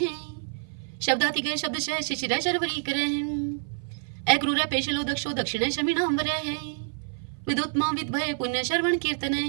शब्दातिक शब्दशः शिशिर शर्वरी कर अक्रूर पेशलो दक्षो दक्षिण शमिनांबर विदुत्मा विद्भय पुण्य श्रवण कीर्तन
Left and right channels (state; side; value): silent; left; 55 dB below the other